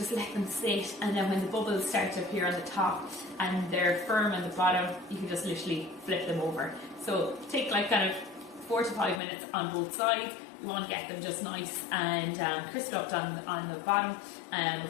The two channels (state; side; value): drops out; right; at 9.2 s